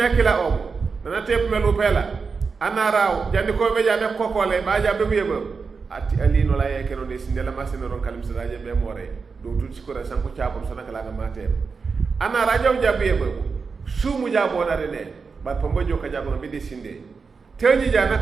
kila o nana tepelu pela anara jandi ko be jabe kokole ba jabe bu yebe ati ali no laye keno de sinde la masino ron kalim sa jaje be more do tuti ko ra sanko chaabum sana kala na mate anara jaw jabe yebe sumu jabo na rene bat pambojo ka jabo be de sinde teñi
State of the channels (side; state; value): left; quieter; 5.0 dB